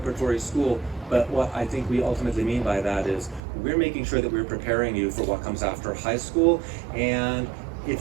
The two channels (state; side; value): drops out; left; at 3.4 s